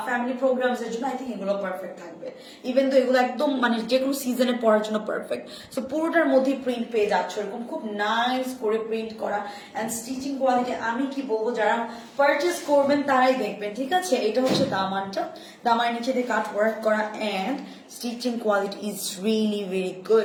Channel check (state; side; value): identical; both; correlation 1.00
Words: ফ্যামিলি প্রোগ্রামস এর জন্য আই থিঙ্ক এগুলো পারফেক্ট থাকবে ইভেন তো এগুলো একদম মানে যে কোনো সিজনে পড়ার জন্য পারফেক্ট সো পুরোটার মধ্যে প্রিন্ট পেয়ে যাচ্ছে এরকম খুব নাইস করে প্রিন্ট করা এন্ড স্টিচিং কোয়ালিটি আমি কি বলবো যারা পারচেজ করবেন তারাই দেখবেন ঠিক আছে এটা হচ্ছে দামানটা দামানের নিচে দিয়ে কাট ওয়ার্ক করা and stitching quality is really very